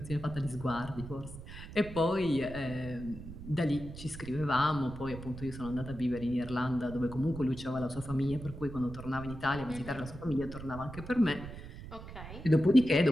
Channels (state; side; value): noise; right; rumble, 12 dB below the sound